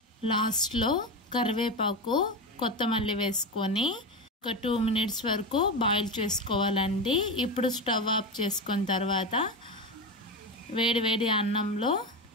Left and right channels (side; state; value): both; normal; correlation 0.19